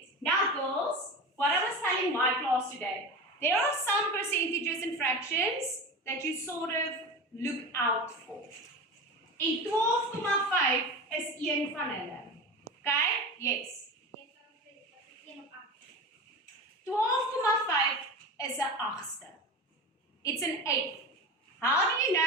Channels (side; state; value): both; normal; correlation 0.28